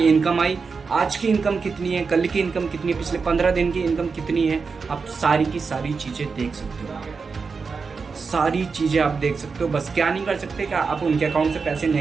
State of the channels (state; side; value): quieter; left; 5.0 dB